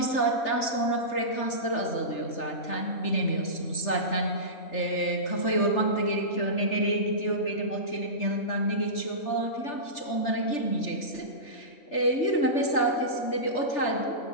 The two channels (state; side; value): late; right; 3.4 ms